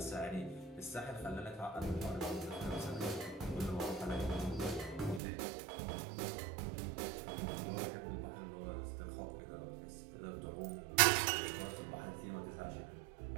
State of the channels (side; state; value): left; drops out; at 5.2 s